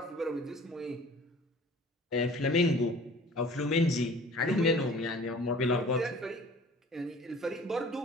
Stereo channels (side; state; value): both; normal; correlation 0.47